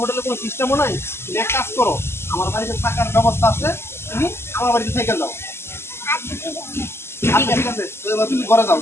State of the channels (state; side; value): late; right; 0.12 ms